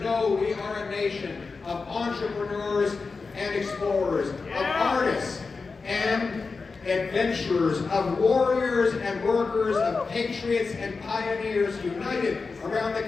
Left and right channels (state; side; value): quieter; right; 4.4 dB